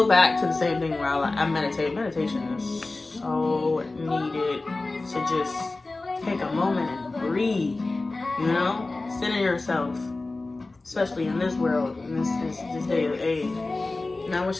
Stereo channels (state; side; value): quieter; right; 3.3 dB